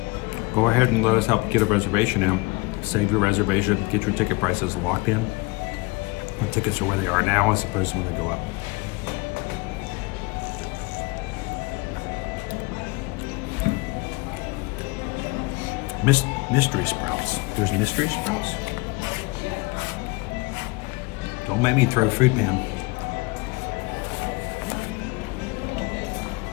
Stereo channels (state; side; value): quieter; right; 25.4 dB